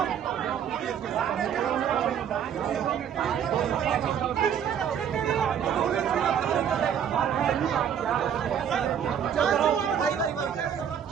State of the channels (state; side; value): quieter; left; 8.6 dB